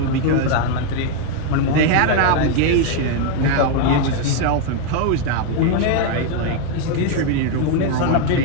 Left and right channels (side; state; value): both; different; correlation 0.01